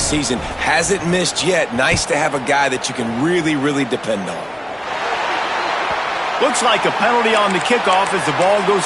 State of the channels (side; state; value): both; identical; correlation 1.00